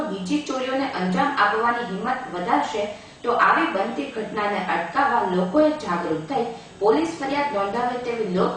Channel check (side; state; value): both; identical; correlation 1.00